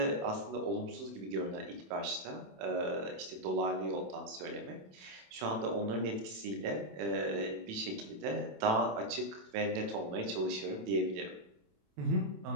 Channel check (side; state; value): left; late; 27 ms